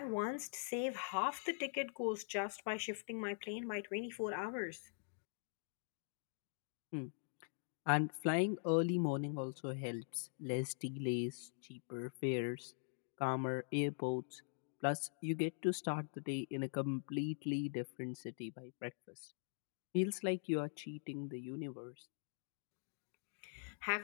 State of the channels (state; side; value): silent; right; digital silence